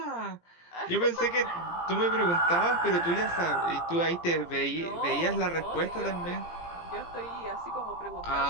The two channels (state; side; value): late; right; 17 ms